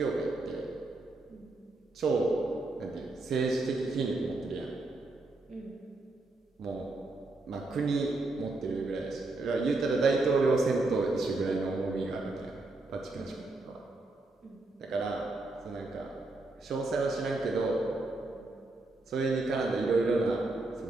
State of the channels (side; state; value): left; quieter; 3.1 dB